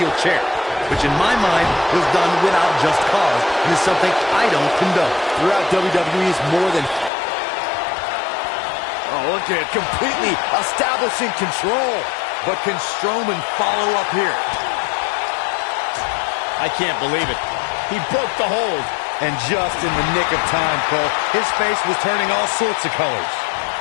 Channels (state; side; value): drops out; right; at 7.1 s